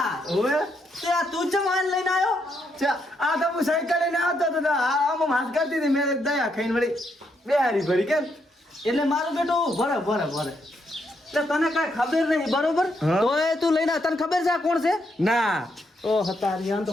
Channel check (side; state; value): both; normal; correlation 0.77